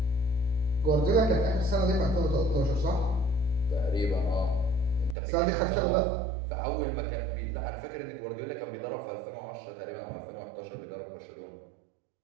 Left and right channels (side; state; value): left; drops out; at 5.2 s